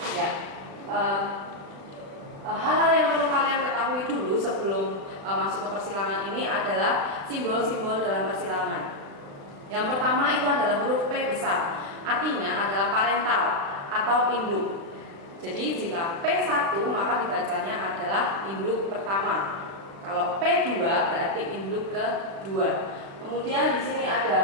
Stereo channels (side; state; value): left; late; 35 ms